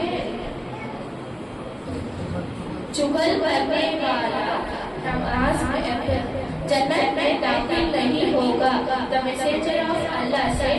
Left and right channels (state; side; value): identical; both; correlation 1.00